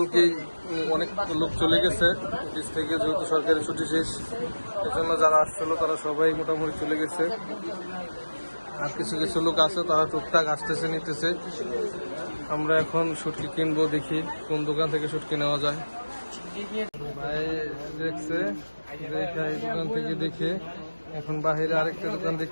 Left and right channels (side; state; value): both; inverted; correlation -1.00